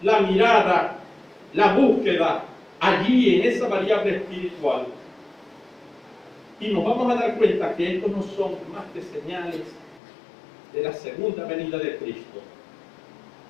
la mirada, la búsqueda allí en esa variable espiritual y nos vamos a dar cuenta que estos no son más que señales de la segunda venida de Cristo,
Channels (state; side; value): drops out; right; at 10.0 s